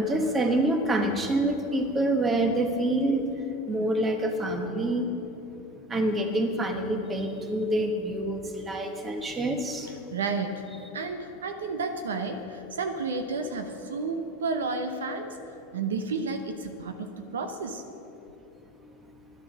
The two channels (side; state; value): both; normal; correlation 0.38